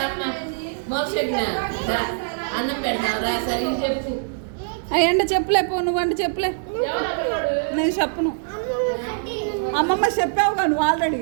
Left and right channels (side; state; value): left; silent; digital silence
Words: మోక్షజ్ఞ అన్నం పెడతాను రా సరే చెప్పు. అయ్యండి చెప్పలే పో, నువ్వంటే చెప్పలే, నేను చెప్పను. అమ్మమ్మ చెప్పావుగా నువ్వు ఆల్రెడీ,